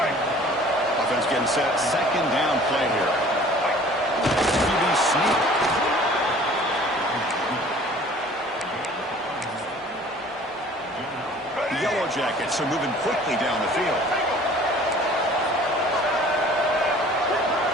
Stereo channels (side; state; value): both; normal; correlation 0.50